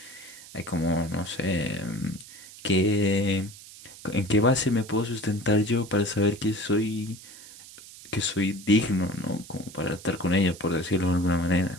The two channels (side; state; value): right; noise; hiss, 18 dB below the sound